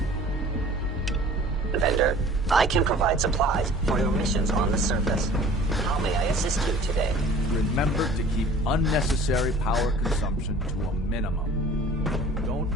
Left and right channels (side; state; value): both; normal; correlation 0.48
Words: vendor, I can provide supplies for your missions on the surface. How may I assist you today? Remember to keep unnecessary power consumption to a minimum. Don't